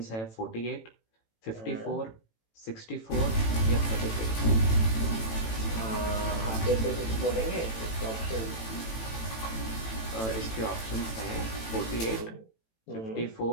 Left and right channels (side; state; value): right; late; 18 ms